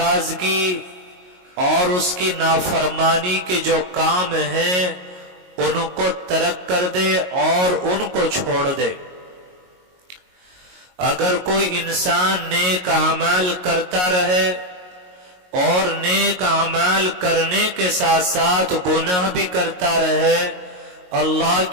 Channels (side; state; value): left; late; 22 ms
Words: اور اس کی نافرمانی کے جو کام ہیں ان کو ترک کر دے اور ان کو چھوڑ دے۔ اگر کوئی انسان نیک اعمال کرتا رہے اور نیک اعمال کرنے کے ساتھ ساتھ گناہ بھی کرتا رہے، اللہ